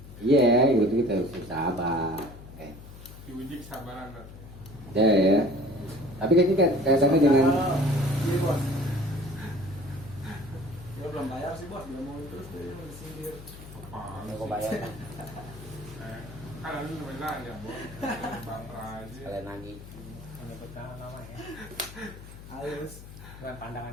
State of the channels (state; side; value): noise; left; hum, 15 dB below the sound